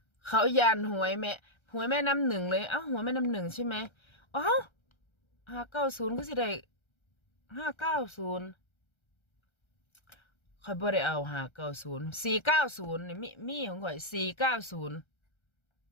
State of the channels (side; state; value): right; late; 1.3 ms